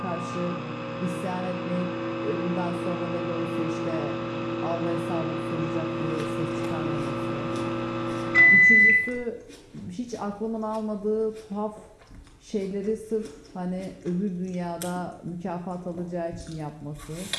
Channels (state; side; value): identical; both; correlation 1.00